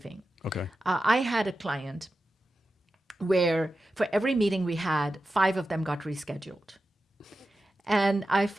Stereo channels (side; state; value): both; normal; correlation 0.92